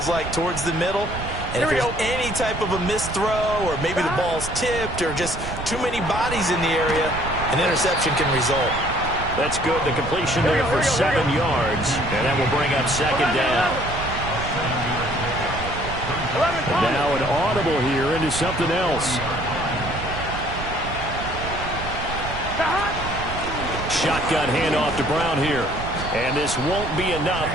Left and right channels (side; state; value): right; noise; rumble, 8 dB below the sound